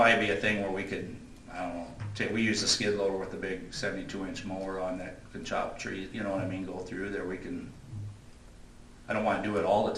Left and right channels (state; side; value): identical; both; correlation 1.00